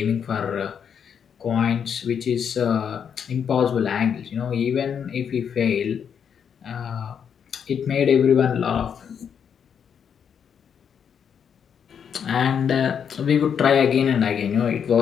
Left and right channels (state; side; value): quieter; right; 7.6 dB